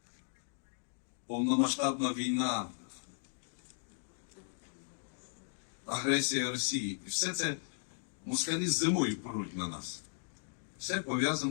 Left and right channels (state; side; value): silent; right; 54 dB below the other